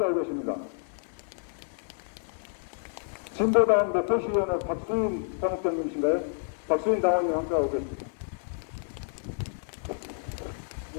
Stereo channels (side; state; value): right; silent; 56 dB below the other